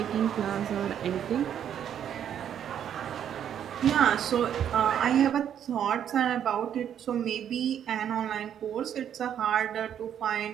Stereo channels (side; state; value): left; quieter; 9.4 dB